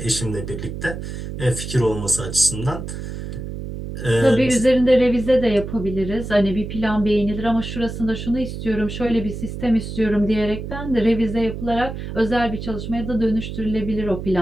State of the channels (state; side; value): noise; right; hum, 7 dB below the sound